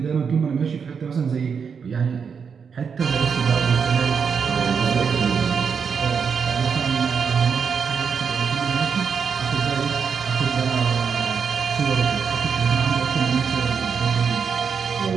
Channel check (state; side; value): quieter; left; 6.3 dB